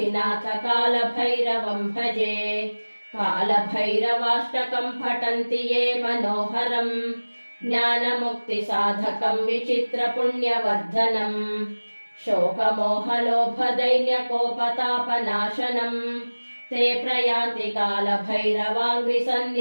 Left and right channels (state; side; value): inverted; both; correlation -1.00